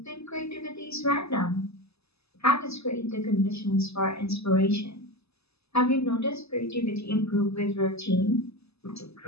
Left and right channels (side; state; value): right; late; 0.79 ms